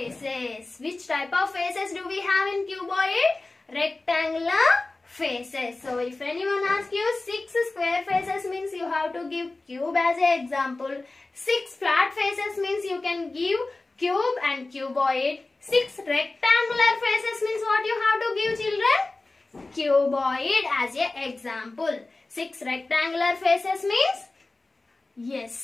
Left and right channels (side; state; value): right; quieter; 3.2 dB